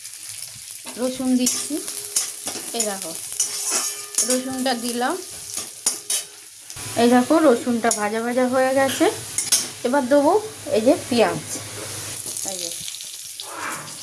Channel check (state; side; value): identical; both; correlation 1.00